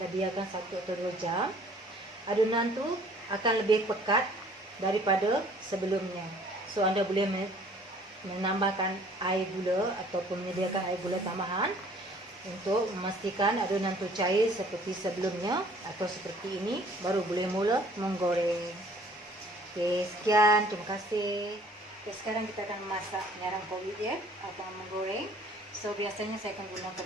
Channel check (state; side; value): normal; both; correlation 0.55